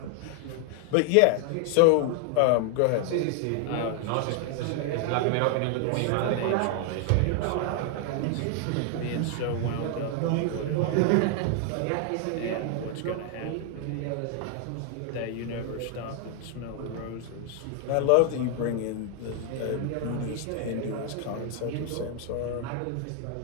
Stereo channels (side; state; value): both; different; correlation 0.00